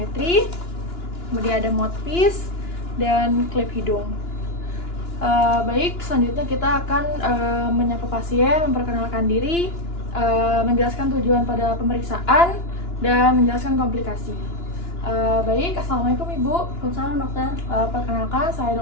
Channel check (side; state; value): right; late; 2.9 ms